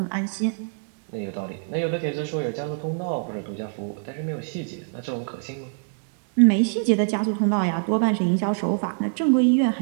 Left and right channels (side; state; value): left; silent; digital silence